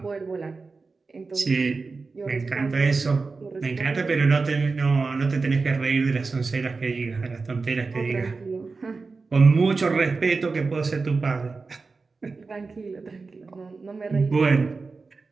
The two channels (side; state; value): left; quieter; 4.2 dB